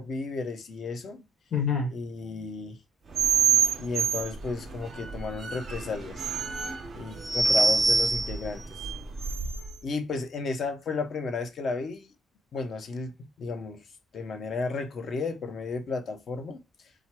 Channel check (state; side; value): normal; both; correlation 0.73